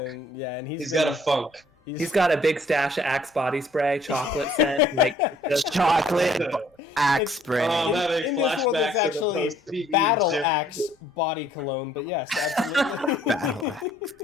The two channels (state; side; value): normal; both; correlation 0.61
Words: and- Yeah, and He's got a funk. He's got a big stash of Axe body spray, chocolate scent, like just Chocolate axe spray. Oh, that in this world, it's flashbacks to the actually post-PE Battle gym. Axe body cologne, but yes, absolutely. Battle axe.